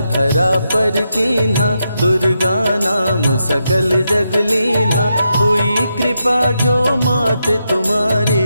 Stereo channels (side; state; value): both; inverted; correlation -0.84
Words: धरा पर कीन्हा, दुर्गा नाम सकल जग लीन्हा, हुई कृपा जो मात तुम्हारी,